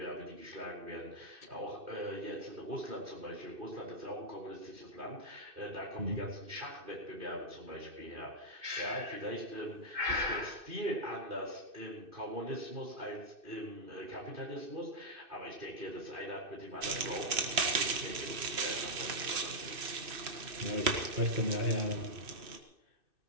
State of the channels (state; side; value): late; left; 2.6 ms